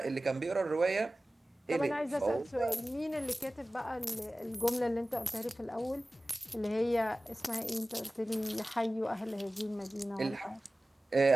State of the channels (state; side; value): normal; both; correlation 0.96